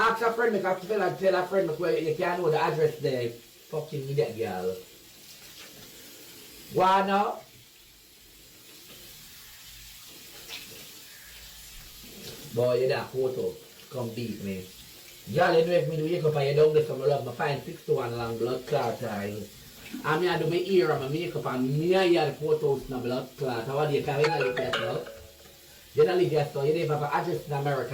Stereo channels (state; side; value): identical; both; correlation 1.00